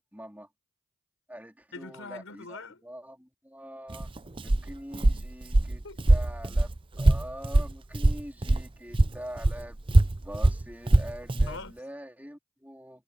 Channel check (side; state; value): both; normal; correlation 0.98